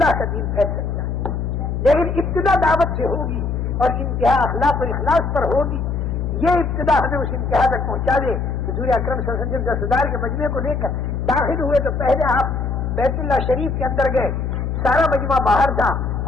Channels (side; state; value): left; noise; hum, 2 dB below the sound